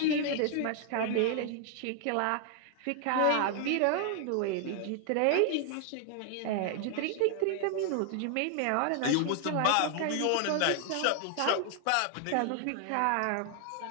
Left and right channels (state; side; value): different; both; correlation 0.00